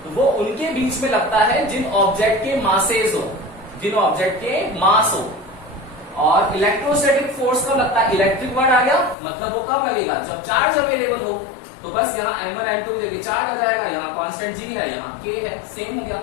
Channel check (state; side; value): drops out; right; at 9.2 s